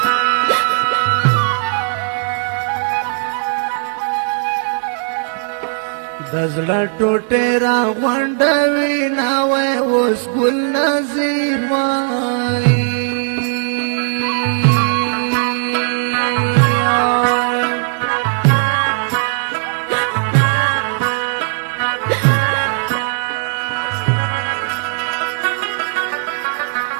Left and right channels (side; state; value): left; silent; 68 dB below the other